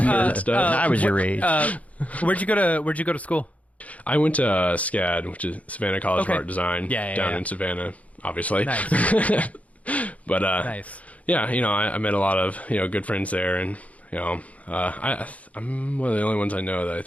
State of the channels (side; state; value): right; late; 0.068 ms